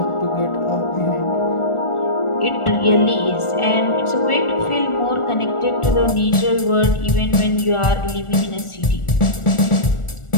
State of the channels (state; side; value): late; right; 1.4 ms